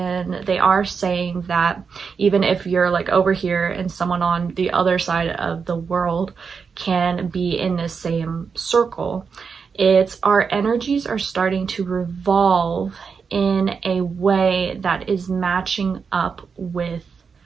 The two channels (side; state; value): left; quieter; 5.7 dB